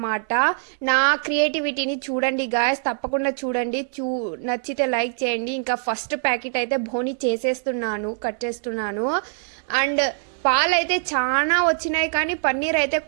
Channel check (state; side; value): silent; left; digital silence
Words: నా క్రియేటివిటీని చూడండి గాయస్, తప్పకుండా చూడండి. నచ్చితే లైక్ చేయండి. ఇంకా ఫస్ట్ ప్యాకెట్ అయితే బోని చేసేస్తున్నాను, కట్ చేస్తున్నాను. అండ్ పాలు అయితే చాలా వచ్చినాయి, కానీ పన్నీర్ అయితే